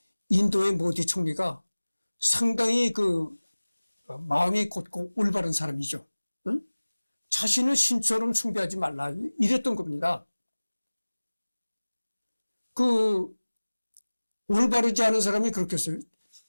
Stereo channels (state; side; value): inverted; both; correlation -1.00